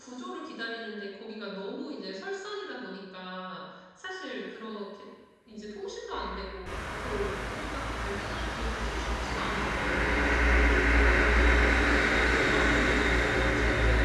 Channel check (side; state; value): both; identical; correlation 1.00